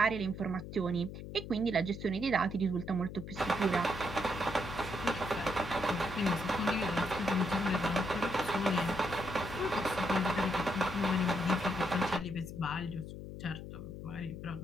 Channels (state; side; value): noise; left; hum, 10 dB below the sound